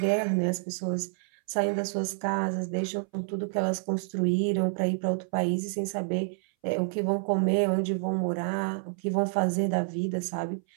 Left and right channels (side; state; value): left; silent; 59 dB below the other